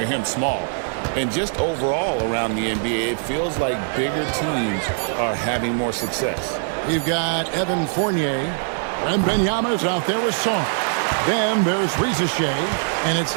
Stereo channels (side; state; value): left; silent; digital silence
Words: him small. And just overall around the NBA, it feels like bigger teams are having more success. We've got Evan Fournier. Wembanyama's out there with Song. Then there's Riza, and it's